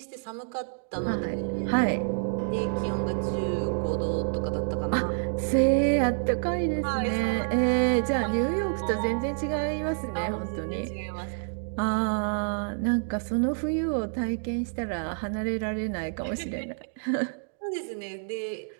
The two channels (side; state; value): left; silent; digital silence